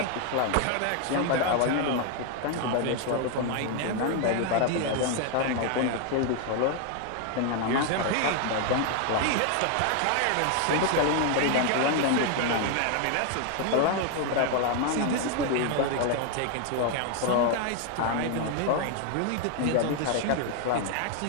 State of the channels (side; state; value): both; different; correlation 0.00